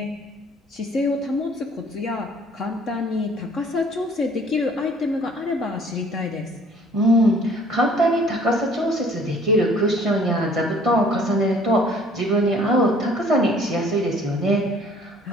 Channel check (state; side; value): normal; both; correlation 0.55